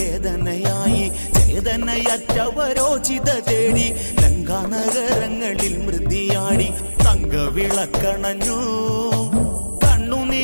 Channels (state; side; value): inverted; both; correlation -1.00